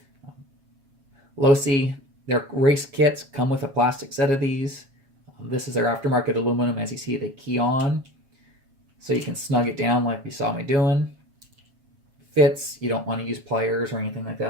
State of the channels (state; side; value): late; left; 7.3 ms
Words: Losi, their race kits come with a plastic set of these. This is their aftermarket aluminum. As you see, they key on, so you can snug it down like you saw me doing. Fits, you don't want to use pliers or anything like